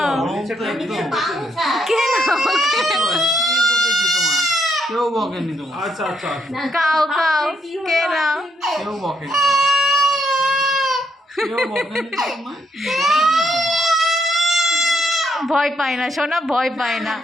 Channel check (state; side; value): normal; both; correlation 0.75